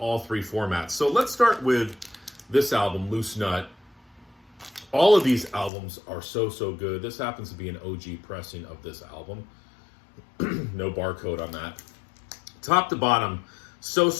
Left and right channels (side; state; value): right; drops out; at 5.7 s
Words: 3 formats. So let's start with this album, Loose Nut. All of these albums are so good. This happens to be an OG pressing of this album. No barcode on that. Top to bottom,